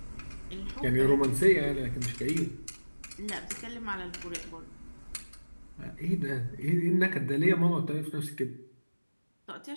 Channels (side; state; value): both; inverted; correlation -1.00